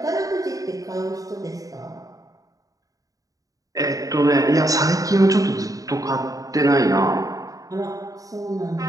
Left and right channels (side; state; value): left; late; 0.17 ms